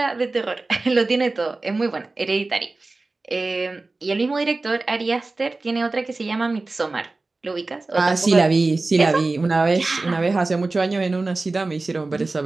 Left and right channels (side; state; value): left; quieter; 3.4 dB